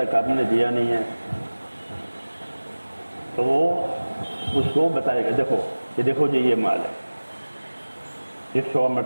آپ نے دیا نہیں ہے، تو وہ اس کو بتائے گا دیکھو جی یہ مال ہے، یہ 100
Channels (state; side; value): inverted; both; correlation -1.00